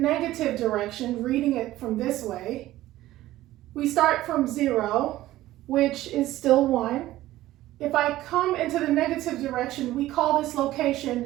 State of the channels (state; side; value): quieter; left; 15.5 dB